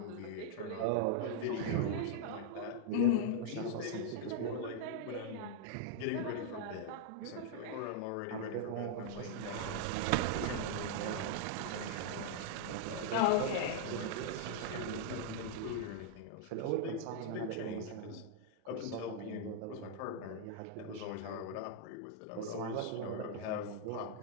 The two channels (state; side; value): different; both; correlation -0.01